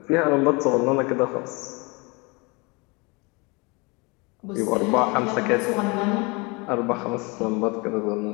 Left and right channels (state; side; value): quieter; right; 27.9 dB